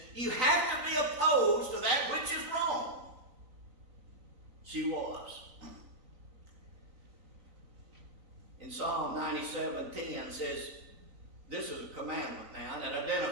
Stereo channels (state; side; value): late; left; 3.9 ms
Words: you have to be opposed to that which is wrong. She was. In Psalm 97:10 says, this is a commandment now, and it